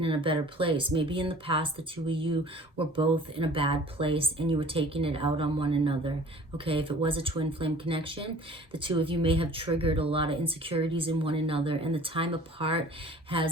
in a better place. Maybe in the past, the two of you were both in a bad place and you were taking it out on one another. Okay, if it was a twin flame connection, the two of you may have triggered a lot of insecurities in one another, and the time apart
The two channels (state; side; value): normal; both; correlation 0.48